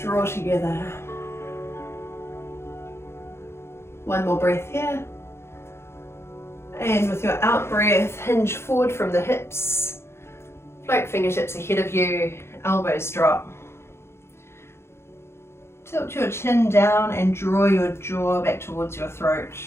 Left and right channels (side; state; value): right; late; 0.12 ms